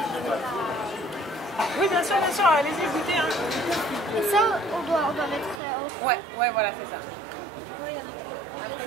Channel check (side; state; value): left; drops out; at 5.6 s